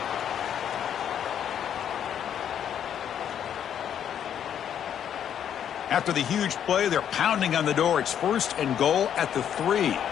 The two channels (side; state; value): right; quieter; 9.3 dB